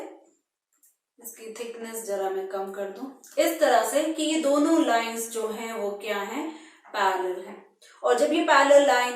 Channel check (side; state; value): both; identical; correlation 1.00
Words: इसकी थिकनेस जरा मैं कम कर दूं, इस तरह से कि ये दोनों लाइंस जो हैं वो क्या हैं, पैरेलल हैं। और जब ये पैरेलल